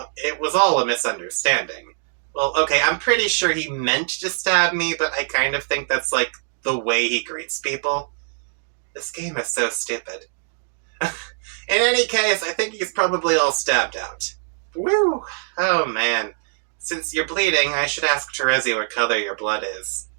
was all a misunderstanding. Well, okay, I'm pretty sure he meant to stab me, but I kind of think that's like the way he greets people. This game is so stupid. In any case, I think he's probably all stabbed out. Woo! Oh man. Since you're bleeding, I should ask Terezi what color your blood is.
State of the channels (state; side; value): silent; left; digital silence